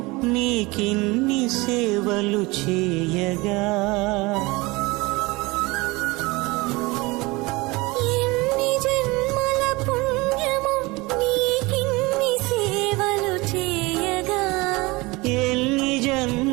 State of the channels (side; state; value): left; quieter; 23.3 dB